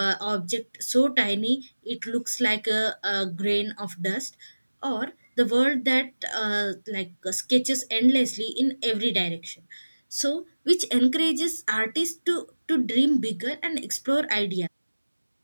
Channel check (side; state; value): both; inverted; correlation -1.00